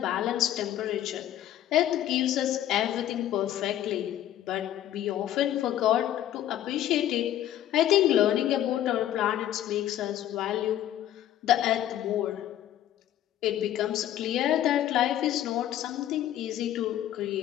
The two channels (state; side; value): quieter; right; 12.2 dB